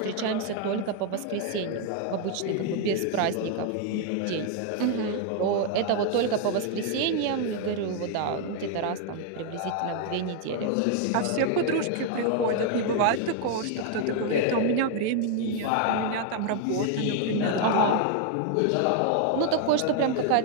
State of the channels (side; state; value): both; different; correlation 0.00